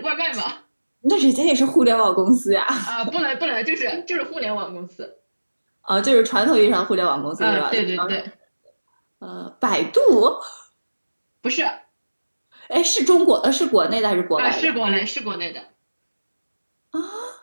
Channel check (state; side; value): inverted; both; correlation -1.00